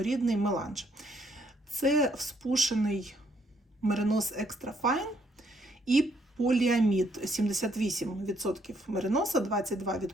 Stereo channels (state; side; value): normal; both; correlation 0.70